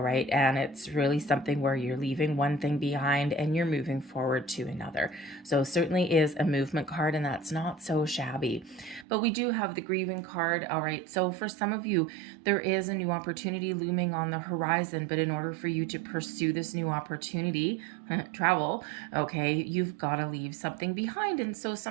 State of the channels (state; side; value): drops out; left; at 9.1 s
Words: right, and it's really something where you're leaving one thing behind and you're moving forward to another. So certainly is a movement card, and that's not so shabby. But we do have the grieving card. All right, so for some of you, there is a new opportunity looming on the horizon, but in order for you to pursue this new opportunity, travel, okay, you've got to leave something behind. And so